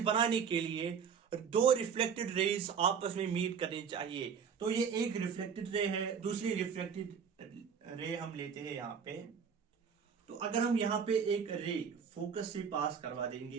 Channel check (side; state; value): left; quieter; 6.8 dB